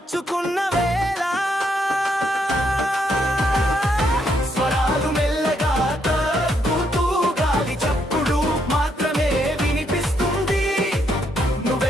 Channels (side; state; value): both; normal; correlation 0.75